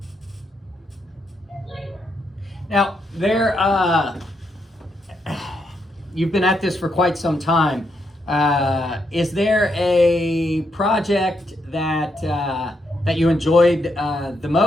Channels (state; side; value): normal; both; correlation 0.79